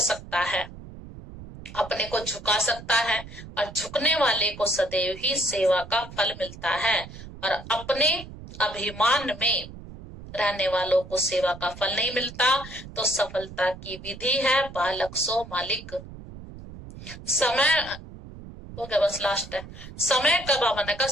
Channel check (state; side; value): noise; right; rumble, 15 dB below the sound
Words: है, अपने को झुका सकता है, और झुकने वाले को सदैव ही सेवा का फल मिलता है। और अपने अभिमान में रहने वालों को सेवा का फल नहीं मिलता। तो सफलता की विधि है बालक सो मालिक। समय हो गया, बस लास्ट है। समय का बाबा ने कहा